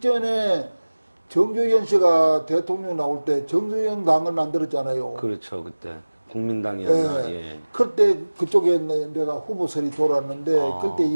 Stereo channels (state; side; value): inverted; both; correlation -1.00